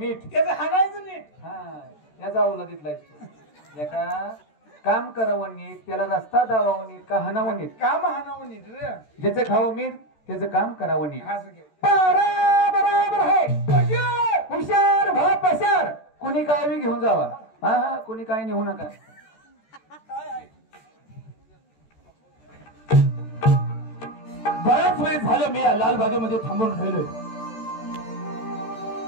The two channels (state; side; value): late; right; 13 ms